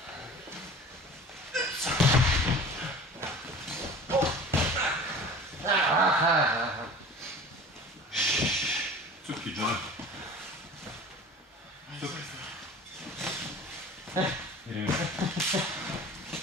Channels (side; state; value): both; normal; correlation 0.41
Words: Cupki, John. Cupki. Idemo.